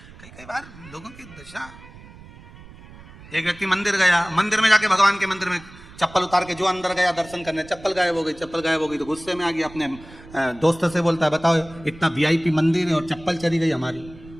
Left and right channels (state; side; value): noise; right; rumble, 20 dB below the sound